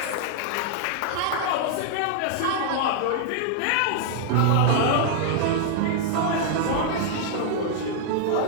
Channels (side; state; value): both; different; correlation -0.01